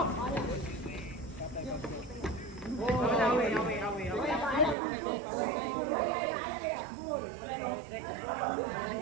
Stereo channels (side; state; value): left; drops out; at 4.8 s